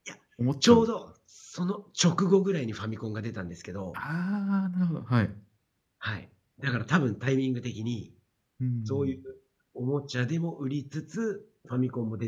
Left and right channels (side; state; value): both; identical; correlation 1.00